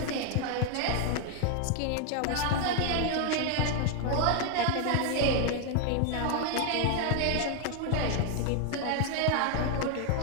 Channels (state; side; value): different; both; correlation 0.00